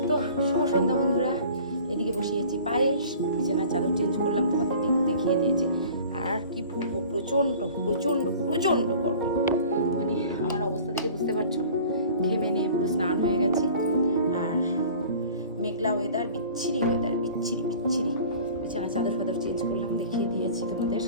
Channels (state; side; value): inverted; both; correlation -0.45